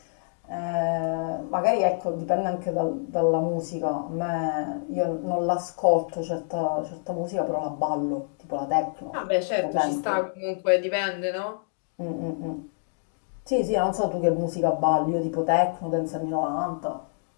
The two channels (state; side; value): silent; right; digital silence